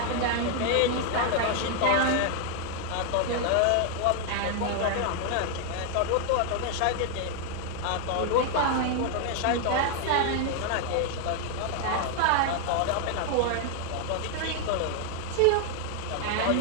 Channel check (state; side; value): different; both; correlation 0.00